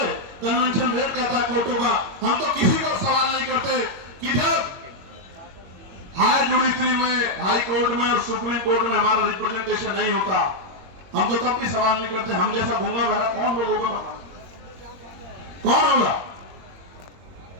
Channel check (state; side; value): late; left; 21 ms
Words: कन्वेंशन रेट कहता है कोर्टों का। हम तो किसी को सवाल नहीं करते कि जब हाई जुडिशरी में, हाई कोर्ट में और सुप्रीम कोर्ट में हमारा रिप्रेजेंटेशन नहीं होता, हम तो तब भी सवाल नहीं करते। हम जैसा घूंगा भरा कौन लोग होगा? कौन होगा?